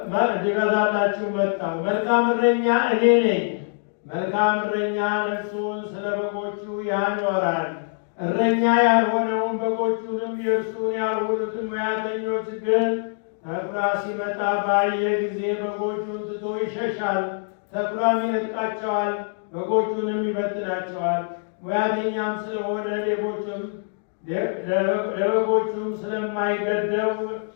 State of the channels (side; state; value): right; silent; digital silence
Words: መጣሁ። መልካም እረኛ እኔ ነኝ። መልካም እረኛ ነፍሱን ስለ በጎቹ ያኖራል። እረኛ ያልሆነውን በጎቹንም የእርሱን ያልሆኑትን ሙያተኞች ግን ተኩላ ሲመጣ ባየ ጊዜ በጎቹን ትቶ ይሸሻል። ተኩላም ይነጥቃቸዋል፣ በጎቹንም ይበትናቸዋል። ሙያተኛም ስለሆነ ለበጎቹም ስለማይገደው